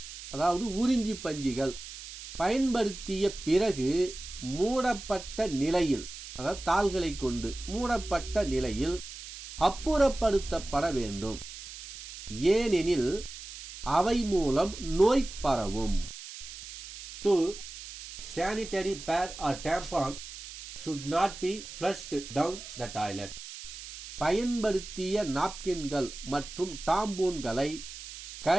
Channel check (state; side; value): noise; right; hiss, 12 dB below the sound